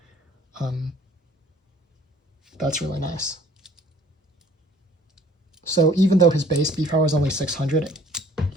that's really nice. So even though his base B power is only 600,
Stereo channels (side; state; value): both; normal; correlation 0.55